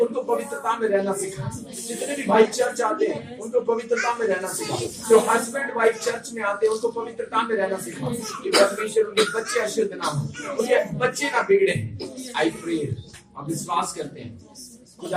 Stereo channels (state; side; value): identical; both; correlation 1.00